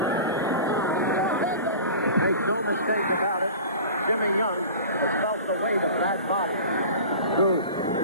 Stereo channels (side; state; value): both; inverted; correlation -0.38